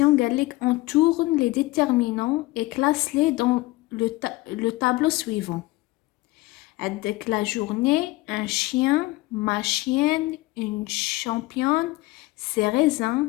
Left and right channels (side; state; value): right; quieter; 20.2 dB